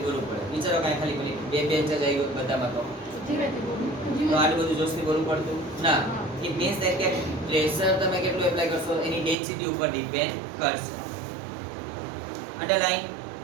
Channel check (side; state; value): left; drops out; at 9.3 s